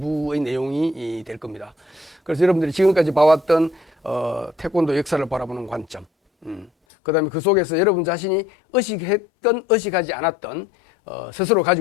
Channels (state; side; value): drops out; right; at 6.7 s